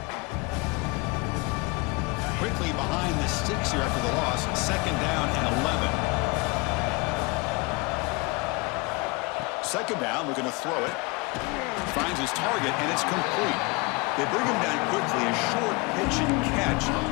Quickly behind the sticks here after the loss, 2nd down and 11. second down, looking to throw it. Finds his target, and it's complete. They bring him down quickly, a short pitch and catch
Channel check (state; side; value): quieter; right; 26.9 dB